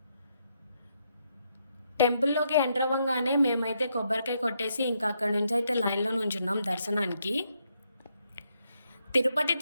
టెంపుల్లోకి ఎంటర్ అవ్వగానే మేమైతే కొబ్బరికాయ కొట్టేసి ఇంకా అక్కడ నుంచి అయితే లైన్లో నుంచున్నాం దర్శనానికి. తిరుపతి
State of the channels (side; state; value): both; inverted; correlation -0.78